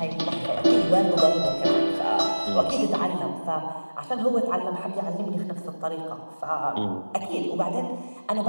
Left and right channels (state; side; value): inverted; both; correlation -1.00